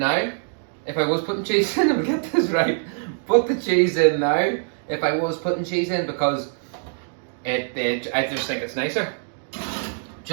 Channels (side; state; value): left; silent; digital silence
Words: If I was putting cheese in, I'll get this right. Put the cheese in now. If I was putting cheese in, because I just think it's nicer.